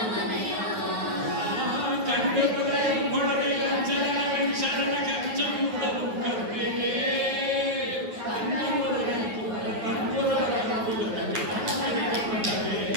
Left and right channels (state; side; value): late; left; 9.5 ms